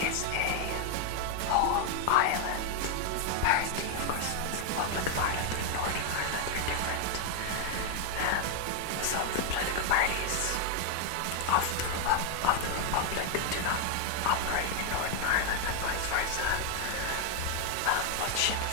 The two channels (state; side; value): different; both; correlation 0.00